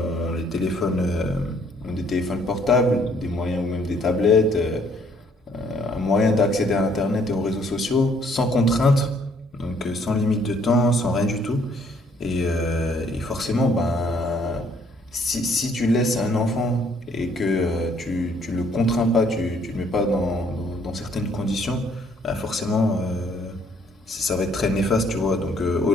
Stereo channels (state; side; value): normal; both; correlation 0.64